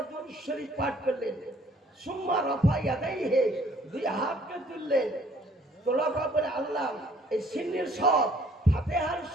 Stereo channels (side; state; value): both; normal; correlation 0.59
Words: দুরূদ শরীফ পাঠ করলেন। সুম্মা রাফা ইয়াদাইহি, 2 হাতকে তুললেন, তোলার পরে আল্লাহ এই সিন্নির সব, ফাতিহার